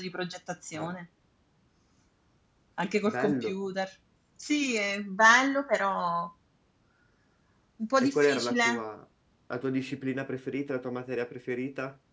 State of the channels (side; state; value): both; identical; correlation 1.00